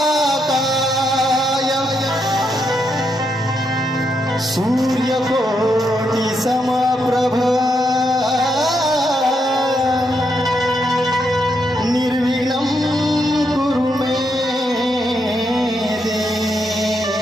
सूर्यकोटि समप्रभ निर्विघ्नं कुरु मे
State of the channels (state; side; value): normal; both; correlation 0.80